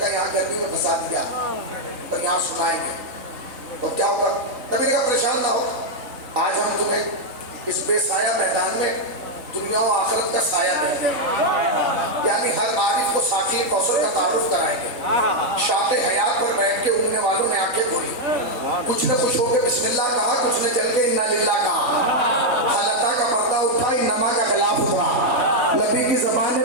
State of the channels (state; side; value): late; left; 4.0 ms